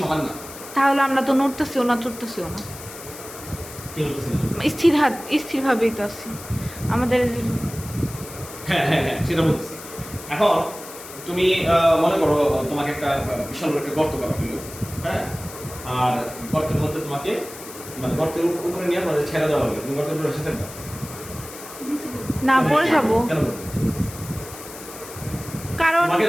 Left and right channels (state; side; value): noise; left; hiss, 14 dB below the sound